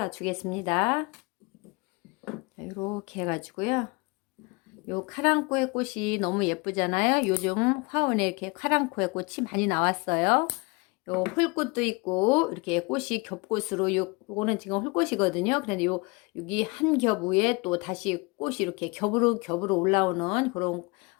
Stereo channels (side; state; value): right; quieter; 28.2 dB